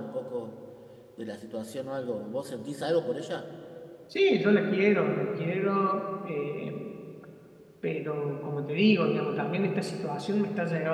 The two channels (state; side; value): identical; both; correlation 1.00